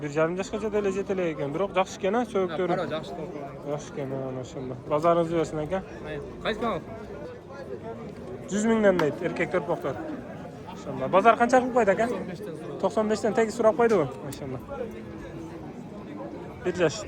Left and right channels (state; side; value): identical; both; correlation 1.00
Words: 1,5 yoshgacha dele yetilek ekan. Biroq yaxshi ekan, so'yibdir. Qaro yaxshi to'lgan. Yaxshi ekan, maşallah. Bozoringiz bo'lsin aka. Qaysi kanal? 100 mingdan deydi, erkak to'rpoqlar. Maşallah. Bozor qancha qilib qo'ydi aka? 95 dan tegi so'rab qo'ydi u. Maşallah. 1 yosh